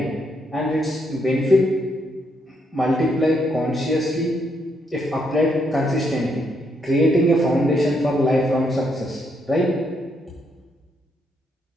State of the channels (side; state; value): both; normal; correlation 0.76